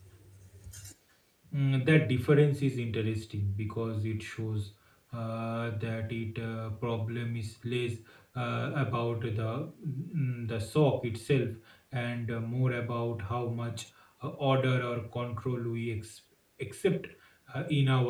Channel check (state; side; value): identical; both; correlation 1.00